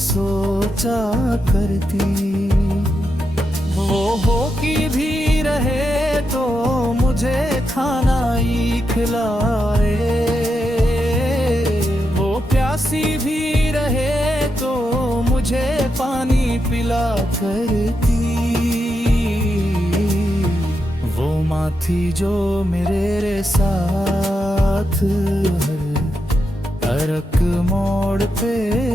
करती। वो हो कि भी रहे तो मुझे खाना ही खिलाए, वो प्यासी भी रहे तो मुझे पानी पिला करती। वो माँ थी जो मेरे साथ हर एक मोड़ पे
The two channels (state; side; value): normal; both; correlation 0.85